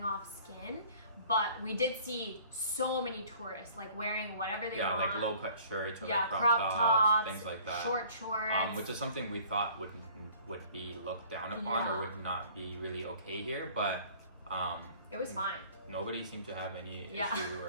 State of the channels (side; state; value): both; inverted; correlation -0.52